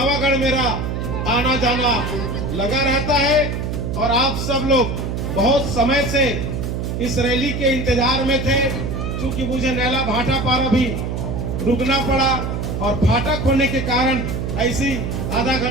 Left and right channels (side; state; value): right; noise; hum, 3 dB below the sound